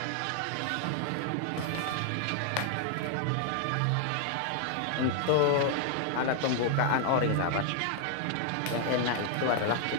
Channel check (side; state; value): both; different; correlation 0.00